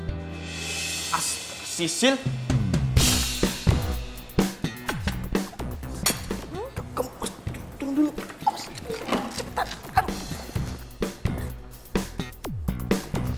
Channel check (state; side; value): identical; both; correlation 1.00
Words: Sisil. Kamu tunggu dulu. Cepetan. Aduh.